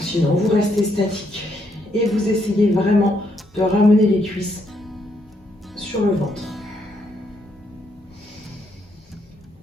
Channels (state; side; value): normal; both; correlation 0.75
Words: vous restez statique et vous essayez vraiment de ramener les cuisses sur le ventre.